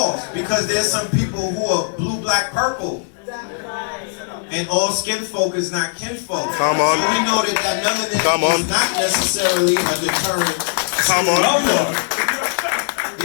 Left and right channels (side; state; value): right; silent; 66 dB below the other